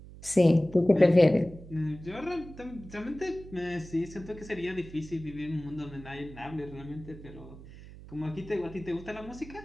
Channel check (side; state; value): right; noise; hum, 17 dB below the sound